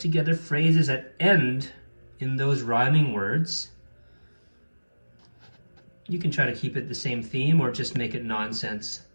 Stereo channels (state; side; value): inverted; both; correlation -1.00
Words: phrases that end in those rhyming words. You can try to keep it the same theme or just make it nonsense.